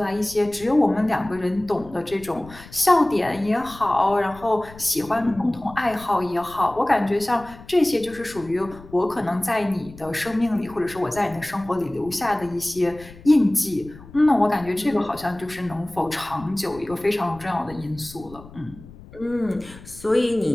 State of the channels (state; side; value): noise; left; rumble, 19 dB below the sound